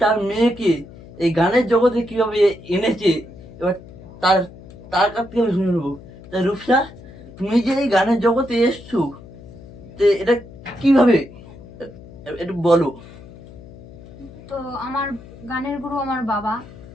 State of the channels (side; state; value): left; noise; hum, 18 dB below the sound